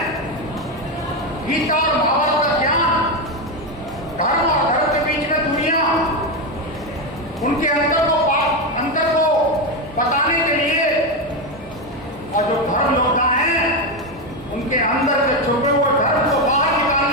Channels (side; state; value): both; normal; correlation 0.11